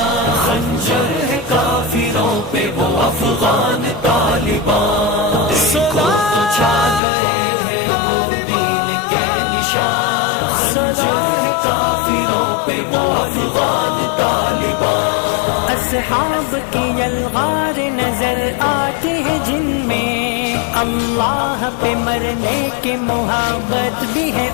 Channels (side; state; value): right; drops out; at 7.0 s